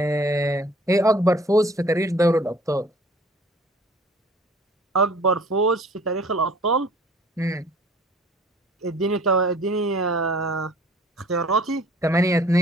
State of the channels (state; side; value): normal; both; correlation 0.52